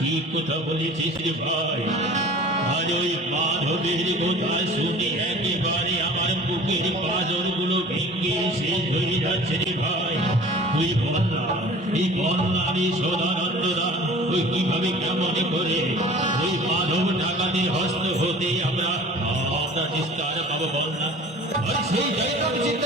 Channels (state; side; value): normal; both; correlation 0.43